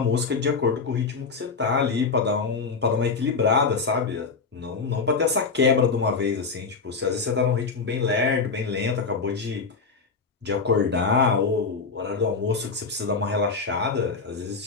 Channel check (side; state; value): right; quieter; 4.8 dB